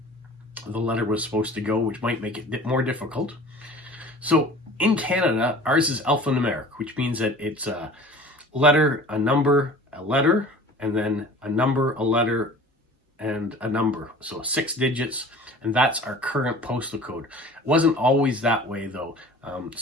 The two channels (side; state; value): both; normal; correlation 0.43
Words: the letter was supposed to go, which might make it more difficult. So in Canada, ours is alphanumeric, which means that it's a letter, a number, a letter, and then a number, a letter, and a number. So 6 digits, and that's our current postal code. It wasn't always that way, though.